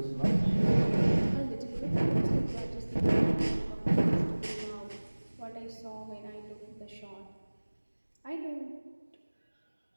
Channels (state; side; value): inverted; both; correlation -1.00